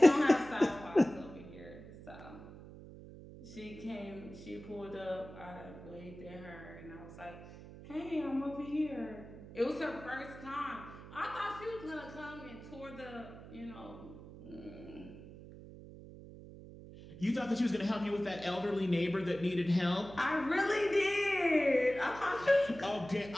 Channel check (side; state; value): right; noise; hum, 15 dB below the sound